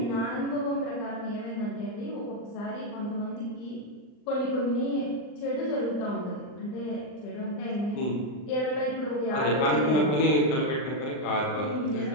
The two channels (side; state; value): right; late; 39 ms